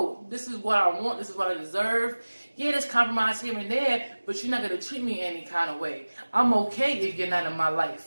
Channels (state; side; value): inverted; both; correlation -1.00